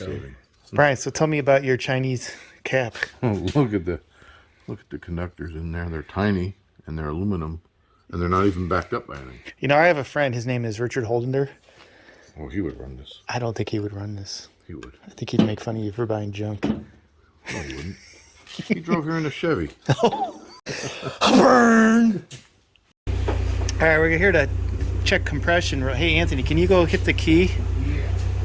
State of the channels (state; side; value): identical; both; correlation 1.00